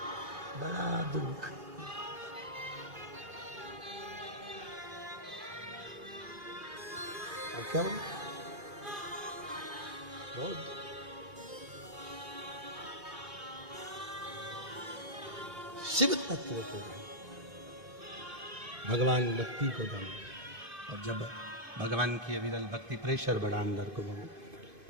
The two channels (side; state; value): left; late; 2.5 ms